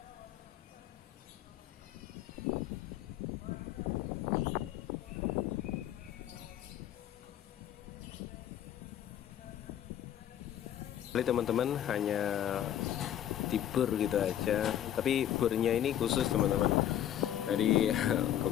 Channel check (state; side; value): quieter; right; 11.1 dB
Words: Teman-teman, hanya dibor gitu aja, tapi bornya ini khusus teman-teman. Jadi